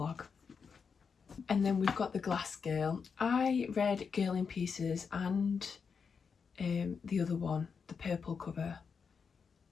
And then we've got The Glass Girl. I read Girl in Pieces and the other one, the purple cover,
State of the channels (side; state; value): right; quieter; 5.8 dB